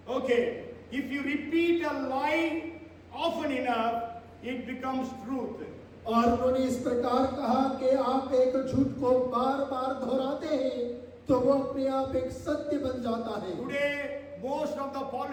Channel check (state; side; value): identical; both; correlation 1.00